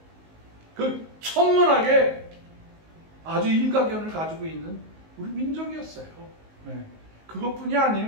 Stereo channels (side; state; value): left; late; 19 ms